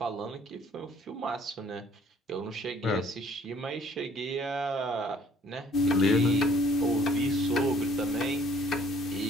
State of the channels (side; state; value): both; normal; correlation 0.59